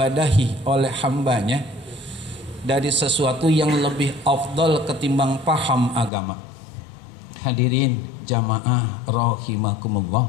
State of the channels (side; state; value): right; drops out; at 6.1 s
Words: oleh hambanya dari sesuatu yang lebih afdal ketimbang paham agama. Hadirin jamaah rahimakumullah,